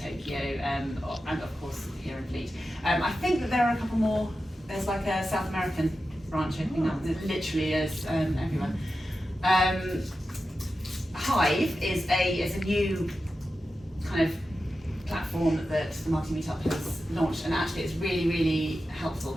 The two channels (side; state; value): both; normal; correlation 0.91